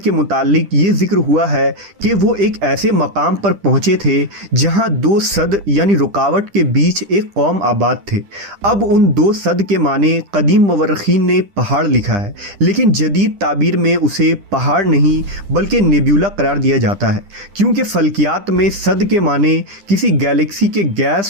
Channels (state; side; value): late; left; 10 ms